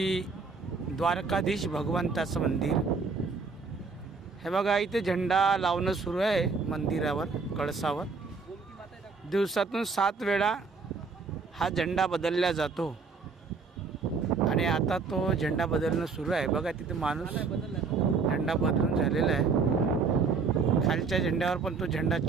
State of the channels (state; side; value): quieter; left; 4.8 dB